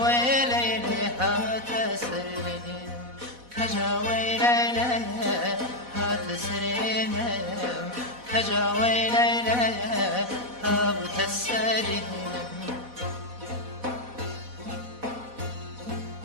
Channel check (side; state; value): left; late; 4.1 ms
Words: لەیلێ هاتە سرێنم کەجا وەی لەیلێ هاتە سرێنم کەجا وەی لەیلێ هاتە سرێنم